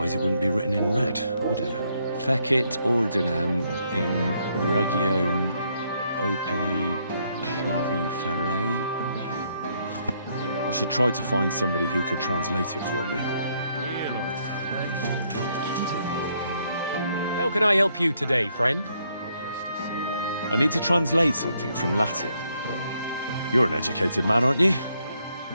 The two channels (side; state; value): both; inverted; correlation -0.73